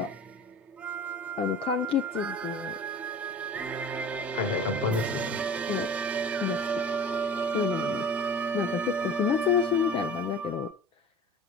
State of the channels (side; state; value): both; normal; correlation 0.40